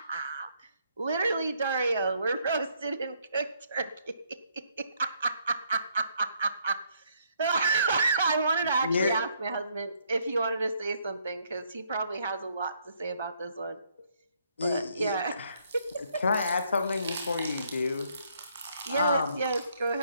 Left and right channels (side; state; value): both; inverted; correlation -0.70